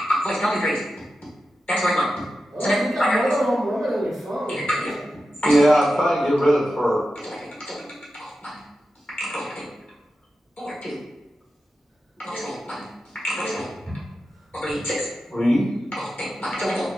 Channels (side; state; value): both; normal; correlation 0.91